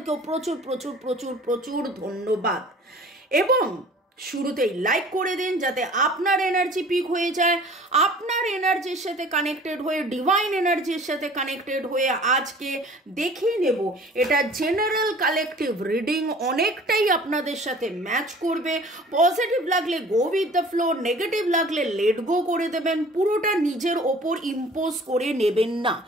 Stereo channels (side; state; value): both; normal; correlation 0.48